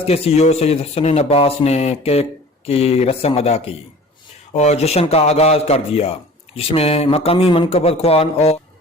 کے سی او سید حسن عباس نے کیک کی رسم ادا کی اور جشن کا آغاز کر دیا، جس میں مقامی منقبت خوان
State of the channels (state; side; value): normal; both; correlation 0.44